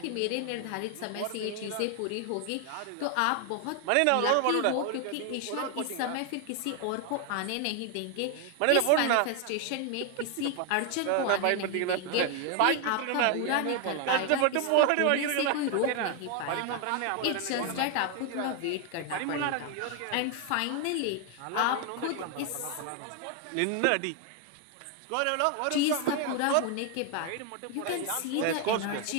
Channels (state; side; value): different; both; correlation 0.01